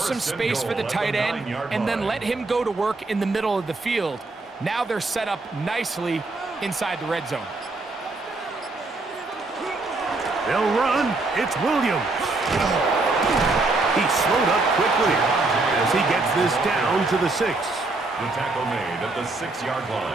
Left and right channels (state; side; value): quieter; left; 3.3 dB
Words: space for the tight end and then let him go to work in the middle of the field. Now they're set up nicely inside the red zone. They'll run. It's Williams. He slowed up quickly as he gets this down to the 6. The tackle made at the 6-yard